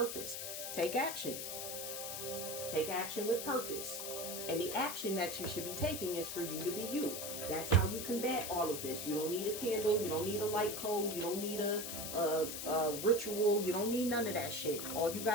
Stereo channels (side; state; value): left; noise; hiss, 5 dB below the sound